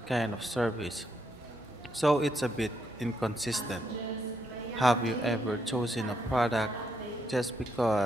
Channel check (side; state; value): both; normal; correlation 0.77